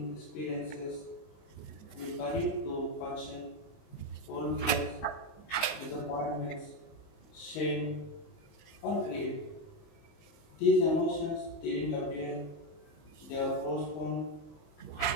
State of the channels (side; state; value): right; late; 19 ms